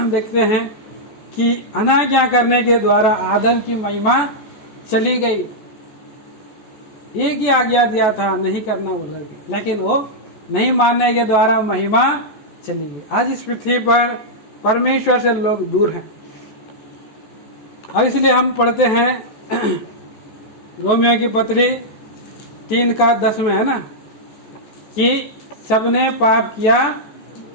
देखते हैं कि अनाज्ञा करने के द्वारा आदम की महिमा चली गई। एक ही आज्ञा दिया था, नहीं करना बोल करके, लेकिन वो नहीं मानने के द्वारा महिमा चली गई। आज इस पृथ्वी पर परमेश्वर से लोग दूर हैं। अब इसलिए हम पढ़ते हैं रोमियो की पत्री 3:10 में, है ना, कि सबने पाप किया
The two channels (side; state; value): right; late; 14 ms